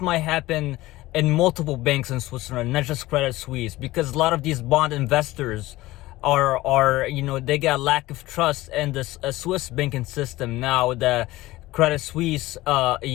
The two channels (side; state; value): right; quieter; 18.0 dB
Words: might happen in multiple banks in Switzerland, not just Credit Suisse, because a lot of these bond investors are they got lack of trust in the Swiss banking system. Now the Credit Suisse